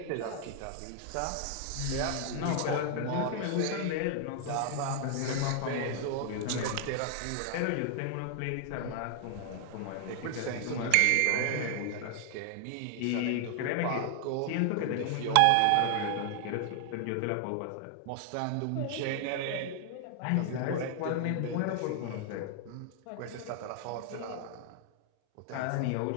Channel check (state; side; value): different; both; correlation 0.00